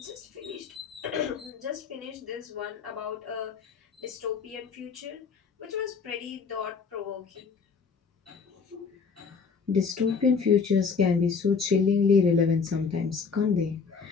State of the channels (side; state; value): right; quieter; 5.4 dB